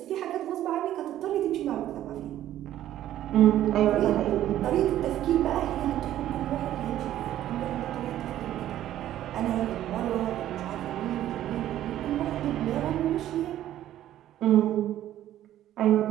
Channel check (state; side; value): quieter; left; 12.6 dB